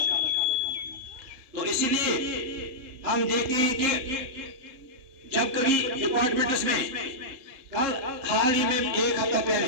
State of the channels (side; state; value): left; late; 3.7 ms